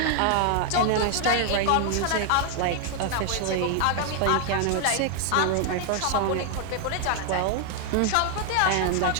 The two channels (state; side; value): different; both; correlation 0.00